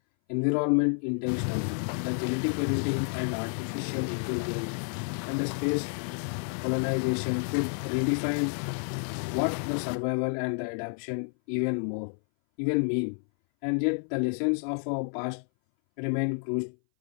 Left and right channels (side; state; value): right; silent; 58 dB below the other